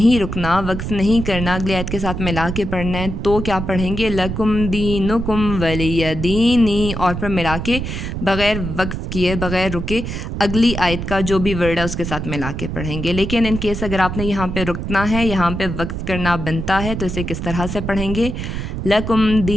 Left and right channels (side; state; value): right; noise; rumble, 5 dB below the sound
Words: رکنا، وقف نہیں کرنا، اگلی آیت کے ساتھ ملا کے پڑھنا ہے تو کیا پڑھیں گے، لکم دینکم ولی دینی، اور پھر ملا کے بغیر وقف کیے، بغیر رکے اگلی آیت کا جو بھی ورڈ ہے اس کے ساتھ ملا کے پڑھیں گے۔ لیکن ان کیس اگر آپ نے یہاں پہ رکنا ہے، یہاں پہ وقف کرنا بنتا ہے تو اسے کس طرح سے پڑھیں گے، لکم